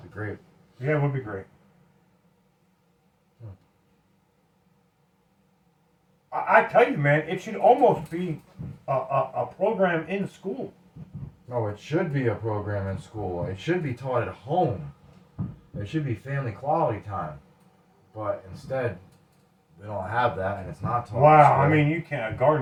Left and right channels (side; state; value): both; identical; correlation 1.00